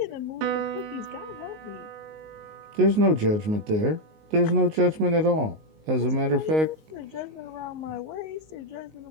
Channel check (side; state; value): left; late; 19 ms